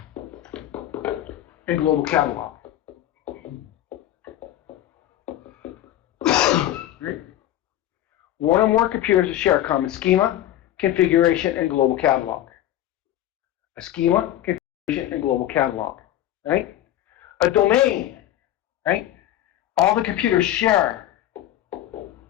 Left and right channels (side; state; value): right; quieter; 12.8 dB